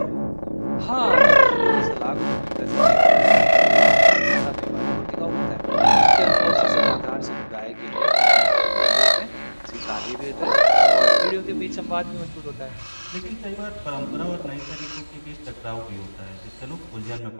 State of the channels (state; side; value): inverted; both; correlation -1.00